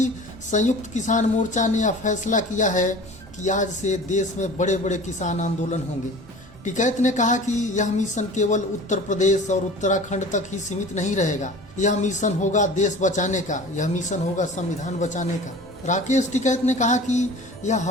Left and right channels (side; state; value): both; normal; correlation 0.41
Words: संयुक्त किसान मोर्चा ने यह फैसला किया है कि आज से देश में बड़े बड़े किसान आंदोलन होंगे। टिकैत ने कहा कि यह मिशन केवल उत्तर प्रदेश और उत्तराखंड तक ही सीमित नहीं रहेगा। यह मिशन होगा देश बचाने का, यह मिशन होगा संविधान बचाने का। राकेश टिकैत ने कहा कि यह